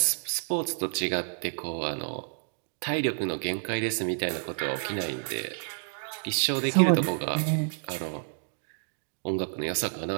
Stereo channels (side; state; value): left; silent; digital silence